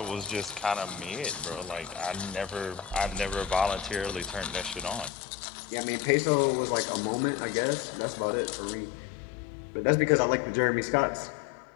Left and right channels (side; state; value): right; drops out; at 5.1 s